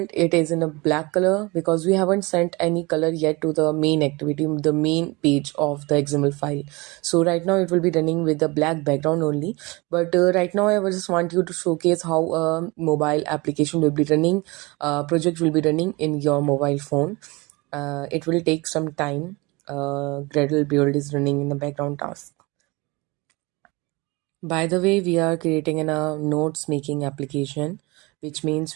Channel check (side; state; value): left; quieter; 24.9 dB